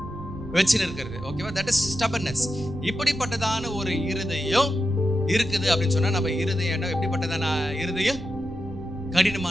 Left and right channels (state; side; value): noise; right; rumble, 12 dB below the sound